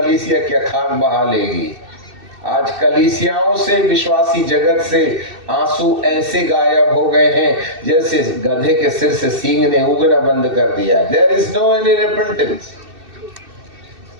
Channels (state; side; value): late; left; 2.6 ms